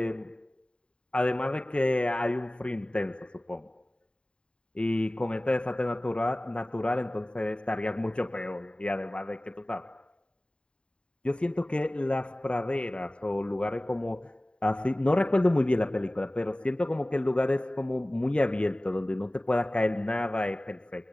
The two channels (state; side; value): late; right; 0.053 ms